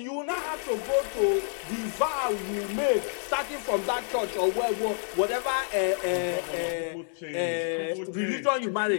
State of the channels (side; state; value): right; silent; digital silence